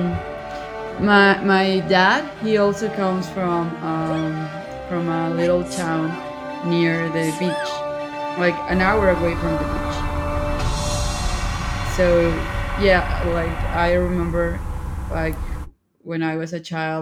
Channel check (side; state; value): both; identical; correlation 1.00